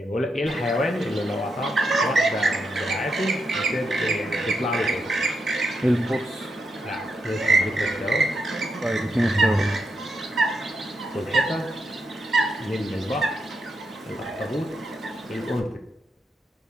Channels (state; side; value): normal; both; correlation 0.83